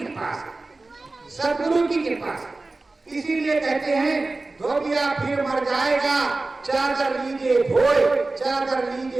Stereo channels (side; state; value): left; quieter; 3.3 dB